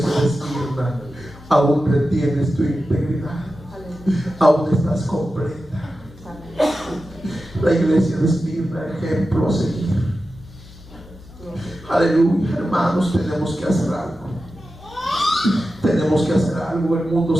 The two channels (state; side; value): normal; both; correlation 0.92